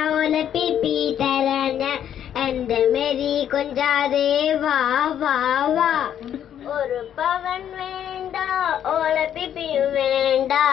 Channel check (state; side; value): quieter; right; 9.9 dB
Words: ഓല പിപ്പി തരാൻ ഞാൻ എന്റെ മേരി കൊഞ്ചാതെ വാ വാ വാ. ഒരു പവൻ വേണ്ട ഓല പിപ്പിയും വേണ്ട